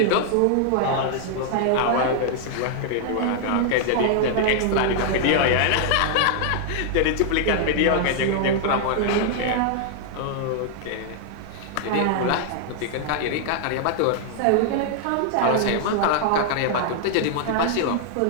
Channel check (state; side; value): different; both; correlation -0.01